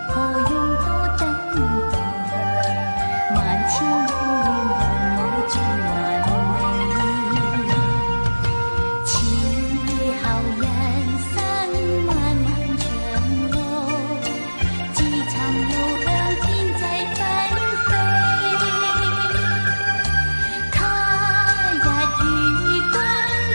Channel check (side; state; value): both; inverted; correlation -1.00